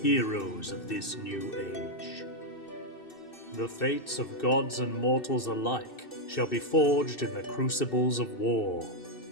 heroes of this new age. The fates of gods and mortals alike shall be forged in the crucibles of war,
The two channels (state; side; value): late; right; 2.6 ms